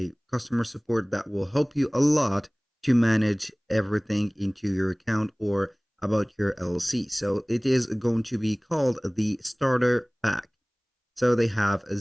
customer support that will help you a lot to manage everything into your account or about your LLC. So it is going to be called the starter pack. So they have a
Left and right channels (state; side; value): identical; both; correlation 1.00